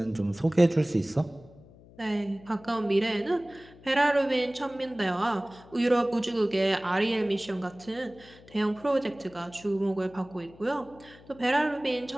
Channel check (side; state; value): left; noise; hum, 23 dB below the sound